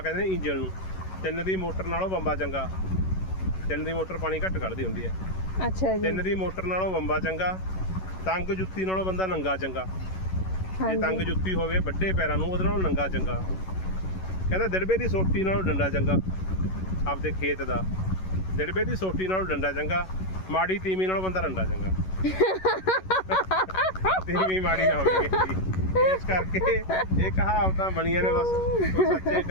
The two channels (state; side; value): late; right; 11 ms